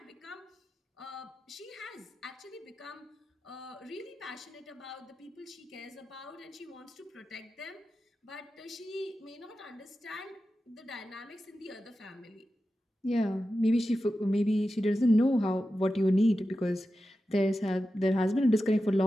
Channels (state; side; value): normal; both; correlation 0.92